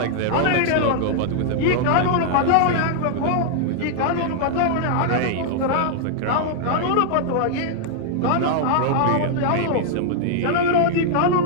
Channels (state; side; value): different; both; correlation -0.01